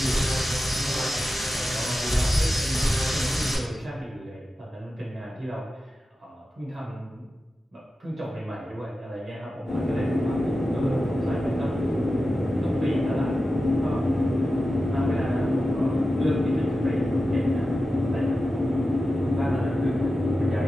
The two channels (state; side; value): normal; both; correlation 0.92